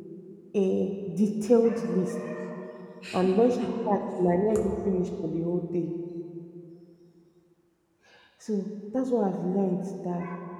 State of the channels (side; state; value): both; identical; correlation 1.00